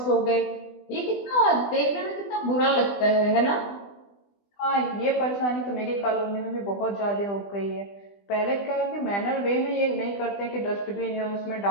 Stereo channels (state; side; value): late; right; 20 ms